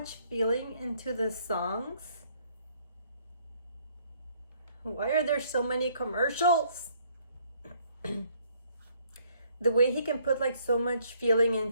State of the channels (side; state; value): both; inverted; correlation -0.65